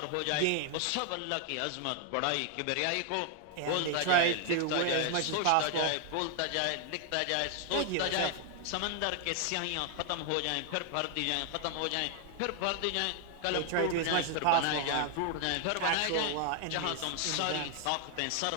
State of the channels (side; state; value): both; different; correlation 0.00